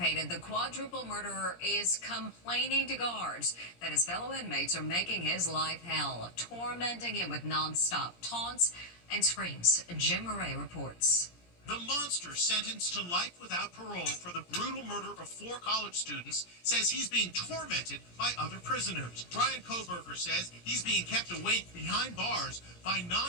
The quadruple murderer is complaining to guards that his fellow inmates are making his life hell, tormenting him with nonstop taunts and screams. Jim Murray reports. The monster sentenced to life without parole for the brutal murder of 4 college students says he's being tormented by other prisoners. Bryan Kohberger says he's being kept awake behind bars by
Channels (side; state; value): right; late; 17 ms